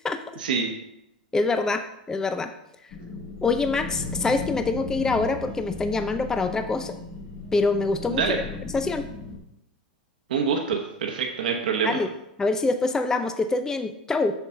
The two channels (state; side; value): normal; both; correlation 0.53